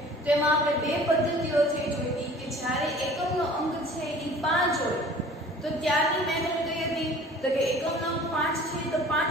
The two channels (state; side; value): normal; both; correlation 0.47